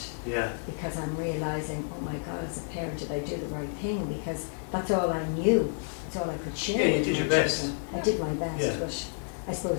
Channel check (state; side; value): silent; right; 58 dB below the other